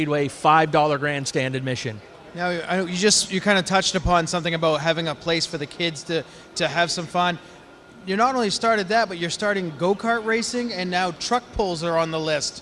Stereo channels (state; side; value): identical; both; correlation 1.00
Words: $5 grandstand admission. Now, you kind of touched upon something about having a place for the kids to have some fun. You not only started that, but you're starting go-kart racing, and now truck pulls are on the